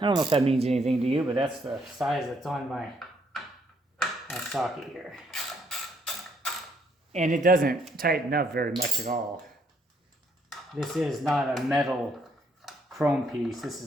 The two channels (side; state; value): both; normal; correlation 0.71